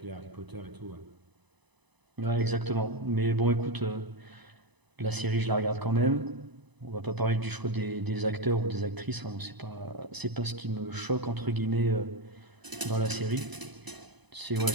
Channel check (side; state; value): left; late; 1.0 ms